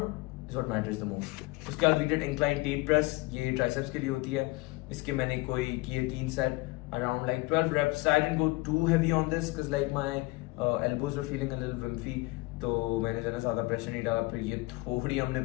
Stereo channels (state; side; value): quieter; right; 22.7 dB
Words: is what matters the most. उसके बाद we did incline tate press. ये triceps के लिए होती है. इसके मैंने कोई किए 3 set around like 12 reps. I didn't go too heavy on this because like my elbows were feeling a little wimpy. तो मैंने जो है ज़्यादा प्रेशर नहीं डाला. फिर ये थोड़ी हमने